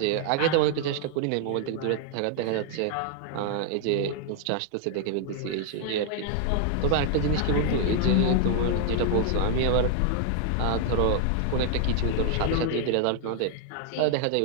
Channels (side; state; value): both; different; correlation 0.00